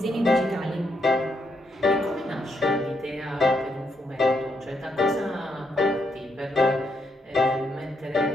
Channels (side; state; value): both; normal; correlation 0.77